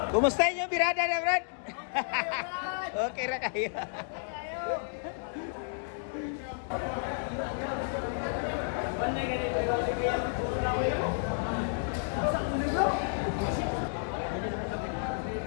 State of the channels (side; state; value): right; silent; digital silence